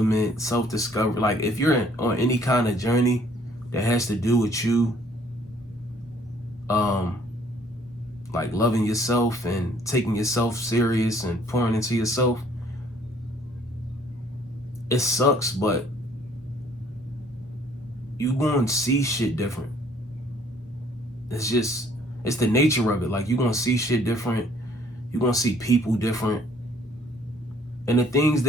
self-discovery, like if you're on any kind of journey that has to do with you like loving yourself and taking yourself serious and pouring into yourself, it sucks, but you gonna see shit different. It's the nature of it. Like, you gonna see shit different. You gonna see people different. And the things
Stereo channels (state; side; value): normal; both; correlation 0.60